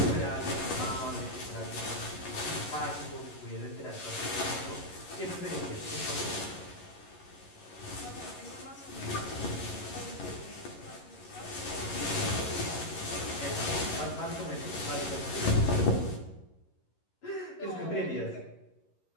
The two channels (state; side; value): late; right; 11 ms